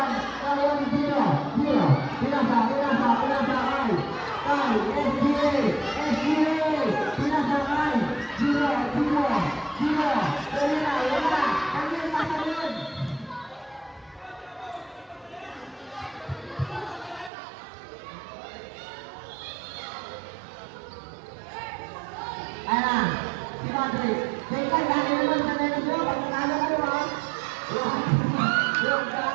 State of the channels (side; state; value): left; drops out; at 17.3 s